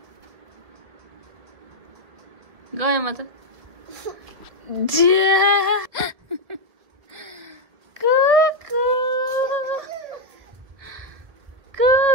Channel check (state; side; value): late; left; 1.8 ms